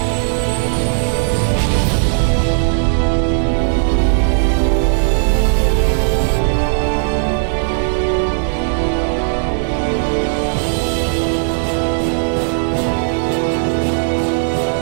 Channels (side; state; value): left; silent; digital silence